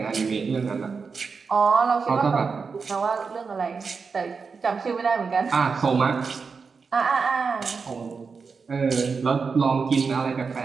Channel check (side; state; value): left; quieter; 5.1 dB